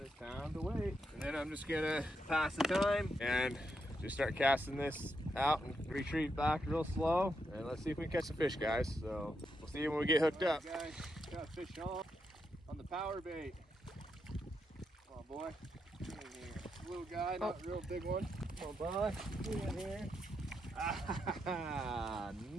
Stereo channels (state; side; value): normal; both; correlation 0.82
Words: it's time to wait. And then I'm just gonna pass the time and just start casting this out and retreat back real slow. And let's see if we can catch some fish, guys. So we'll see when we get hooked up. Guys, got a fish on the power bait. Come on, boy. Get in here. Little guy, not a real big one. Come on, boy. Get in here. Ah,